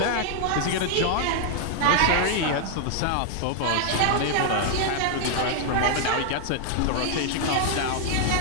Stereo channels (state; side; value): different; both; correlation 0.00